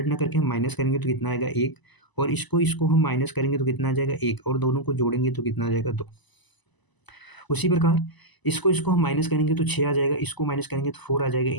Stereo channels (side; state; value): right; late; 1.0 ms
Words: ना करके हम माइनस करेंगे तो कितना आएगा 1, और इसको हम माइनस करेंगे तो कितना आ जाएगा 1, और दोनों को जोड़ेंगे तो कितना आ जाएगा 2। उसी प्रकार इसको हम माइनस करेंगे तो 6 आ जाएगा, इसको माइनस करेंगे तो 4 आ जाएगा,